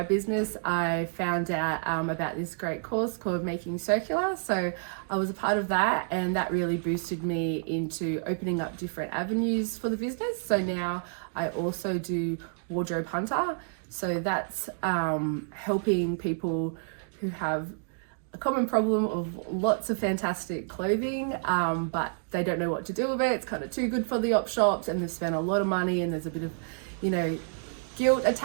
business, I found out about this great course called Making Circular. So I was a part of that, and that really boosted me into opening up different avenues for the business. So now I also do Wardrobe Hunter. So that's helping people who have a common problem of lots of fantastic clothing, but they don't know what to do with it. It's kind of too good for the op shops, and they've spent a lot of money, and there's a bit of, guilt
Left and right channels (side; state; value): left; silent; digital silence